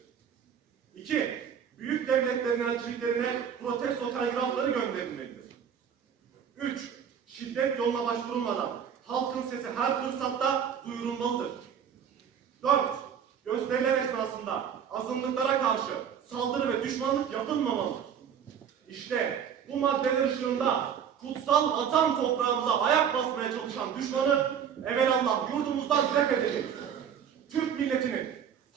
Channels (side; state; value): left; quieter; 8.2 dB